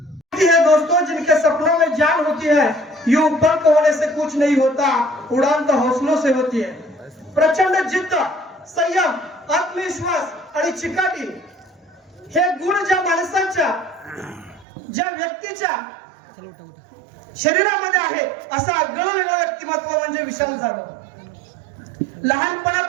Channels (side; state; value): left; drops out; at 14.7 s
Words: है दोस्तों, जिनके सपनों में जान होती है, ये ऊपर को होने से कुछ नहीं होता, उड़ान तो हौसलों से होती है. प्रचंड जिद्द, संयम, आत्मविश्वास आणि चिकाटी हे गुण ज्या माणसाच्या, ज्या व्यक्तीच्या शरीरामध्ये आहे, असं आगळं वेगळं व्यक्तिमत्व म्हणजे विशाल जाधव.